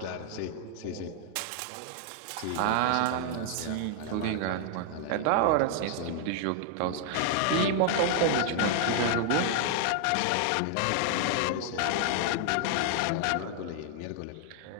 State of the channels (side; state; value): both; different; correlation 0.00